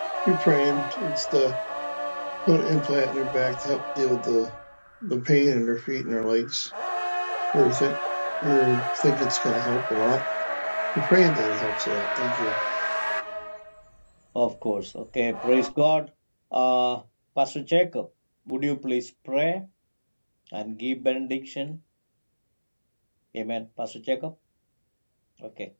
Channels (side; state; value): both; inverted; correlation -1.00